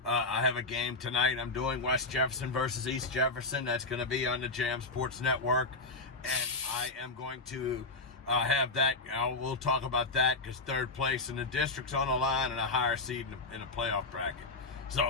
I have a game tonight. I'm doing West Jefferson versus East Jefferson. That's going to be on the Jam Sports Network. And I am going to have that. We'll talk about that because third place in the district's on the line and a higher seed in the playoff bracket is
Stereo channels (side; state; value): right; quieter; 3.4 dB